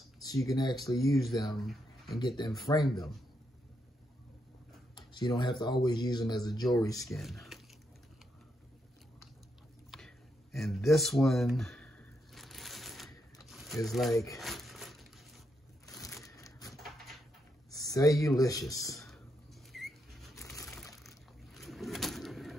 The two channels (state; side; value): normal; both; correlation 0.81